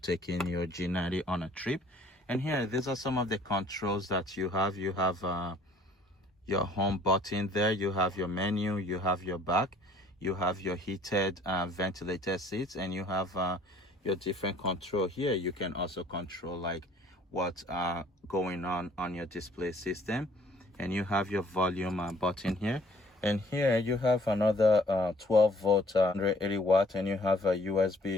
your G90 on a trip. And here, these are some of the controls that you have. You have your home button there, you have your menu, you have your back, you have your heated ventilated seats, and you have your different control here. You can also control like what's going on your display system, and you have your volume button here. And here you have another 12-volt 180-watt, and you have a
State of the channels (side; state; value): both; normal; correlation 0.57